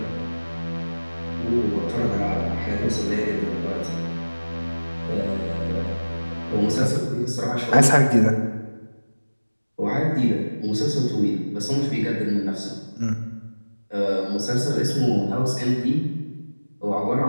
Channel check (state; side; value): inverted; both; correlation -1.00